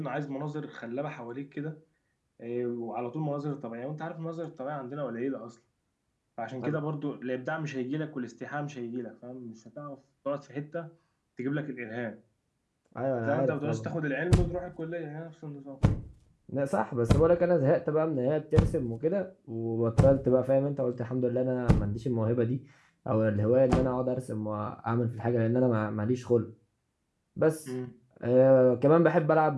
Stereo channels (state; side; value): identical; both; correlation 1.00